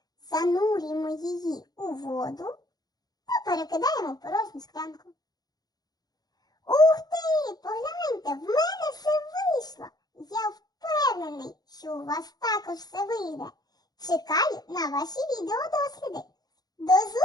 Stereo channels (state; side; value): late; right; 0.19 ms